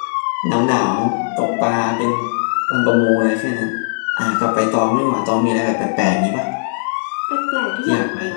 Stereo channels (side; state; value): right; silent; 58 dB below the other